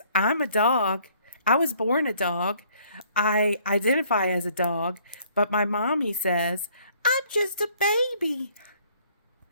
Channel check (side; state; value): both; inverted; correlation -0.62